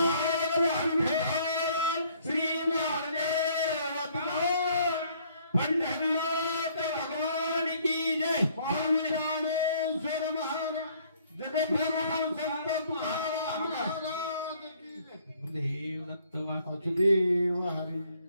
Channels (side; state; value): both; inverted; correlation -0.62